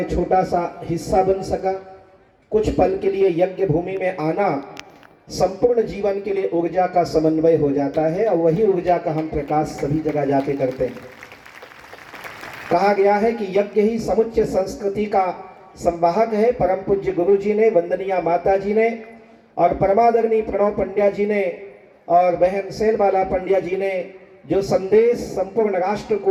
छोटा सा हिस्सा बन सका। कुछ पल के लिए यज्ञ भूमि में आना संपूर्ण जीवन के लिए ऊर्जा का समन्वय हो जाता है और वही ऊर्जा का हम प्रकाश सभी जगह जाके करते हैं। कहा गया है कि यज्ञ ही समुच्चय संस्कृति का संवाहक है। परम पूज्य गुरु जी ने, वंदनीय माता जी ने और परमादरणीय प्रणव पंड्या जी ने और बहन सेलबाला पंड्या जी ने जो संदेश संपूर्ण राष्ट्र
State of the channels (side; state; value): both; identical; correlation 1.00